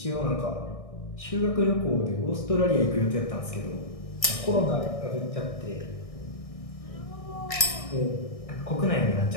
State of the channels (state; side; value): late; right; 1.6 ms